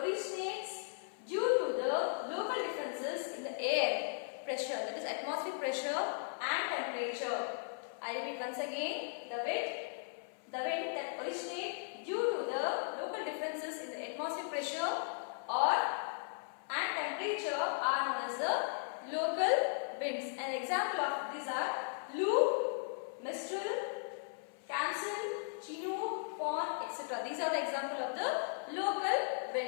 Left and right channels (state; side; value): silent; right; 53 dB below the other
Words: due to the local differences in the air pressure, that is atmospheric pressure and temperature. I repeat once again: the wind that originates due to the local differences in the atmospheric pressure and temperature are known as the local winds. An example of these are Lu, Mistral, Kamsen, Chinook, Fawn, etc. These are the example of the local